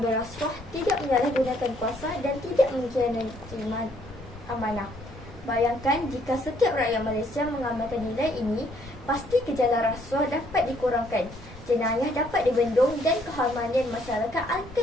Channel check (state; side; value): noise; right; rumble, 19 dB below the sound